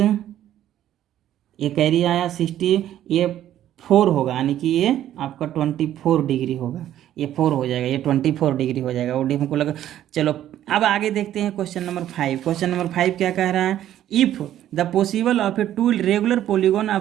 ये कैरी आया 60, ये 4 होगा यानी कि ये आपका 24 डिग्री होगा, ये 4 हो जाएगा, ये 24 डिग्री हो जाएगा। वो हमको लगा। चलो अब आगे देखते हैं क्वेश्चन नंबर 5। क्वेश्चन नंबर 5 क्या कह रहा है, if the possible of a to regular polygon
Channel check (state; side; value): quieter; left; 12.0 dB